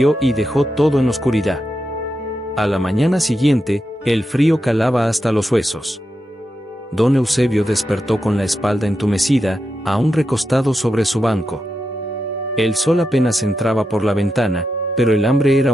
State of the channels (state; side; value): normal; both; correlation 0.87